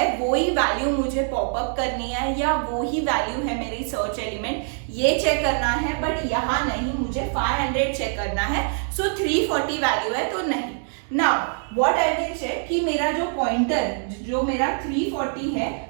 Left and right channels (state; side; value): silent; left; 63 dB below the other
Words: वो ही वैल्यू मुझे पॉपअप करनी है या वो ही वैल्यू है मेरी सर्च एलिमेंट, ये चेक करना है, बट यहाँ नहीं, मुझे 500 चेक करना है। सो 340 वैल्यू है तो नहीं। Now what I will check कि मेरा जो पॉइंटर जो मेरा 340